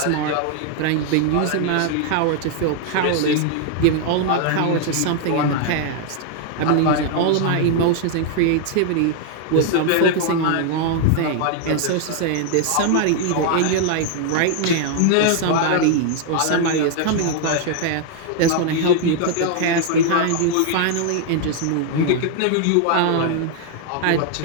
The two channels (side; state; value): both; different; correlation 0.00